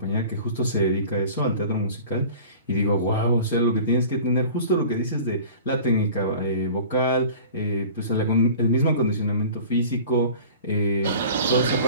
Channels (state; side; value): inverted; both; correlation -0.42